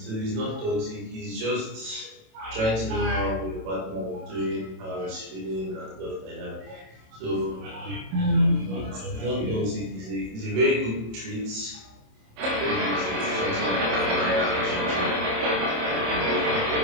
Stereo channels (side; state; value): left; late; 27 ms